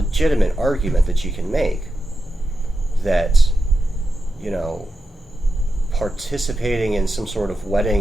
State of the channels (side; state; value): both; normal; correlation 0.89